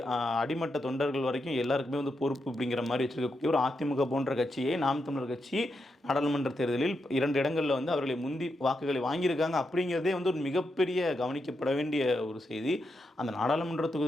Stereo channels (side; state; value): both; normal; correlation 0.84